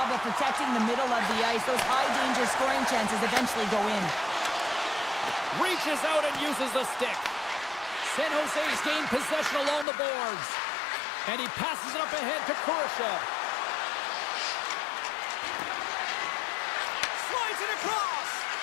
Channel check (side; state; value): right; drops out; at 9.9 s